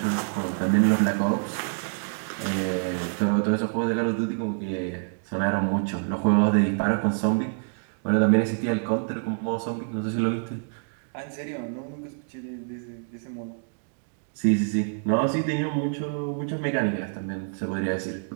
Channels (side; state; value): left; silent; digital silence